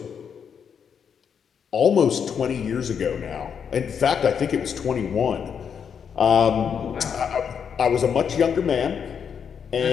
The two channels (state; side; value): quieter; right; 7.3 dB